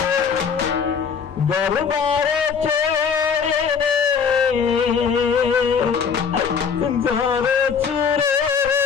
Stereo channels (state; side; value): quieter; right; 6.4 dB